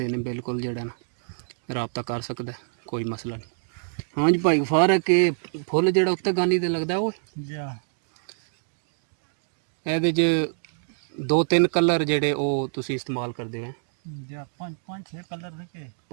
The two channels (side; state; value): left; silent; digital silence